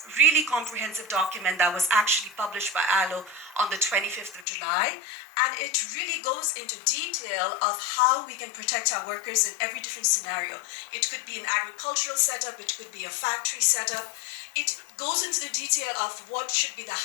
really comprehensive document that was actually published by ILO on the 25th of July. And it really goes into detail of how we can protect our workers in every different scenario. It could be an agricultural setup, it could be a factory setup. It goes into the detail of what should be the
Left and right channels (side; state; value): right; drops out; at 4.5 s